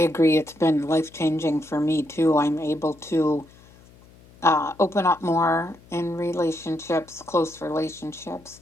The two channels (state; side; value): noise; left; hum, 25 dB below the sound